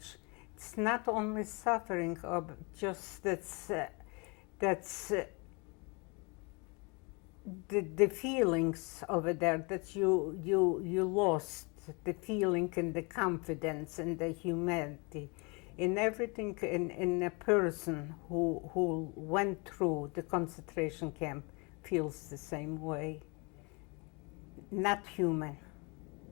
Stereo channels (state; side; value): quieter; right; 30.4 dB